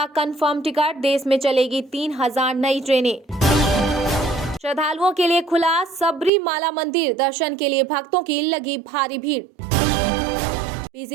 कंफर्म टिकट। देश में चलेगी 3000 नई ट्रेनें। श्रद्धालुओं के लिए खुला सबरीमाला मंदिर। दर्शन के लिए भक्तों की लगी भारी भीड़।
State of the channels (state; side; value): drops out; left; at 6.3 s